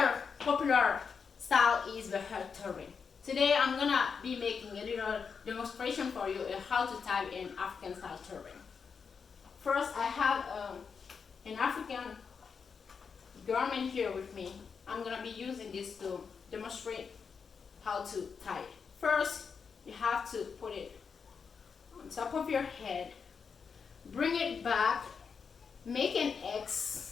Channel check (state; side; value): quieter; right; 5.9 dB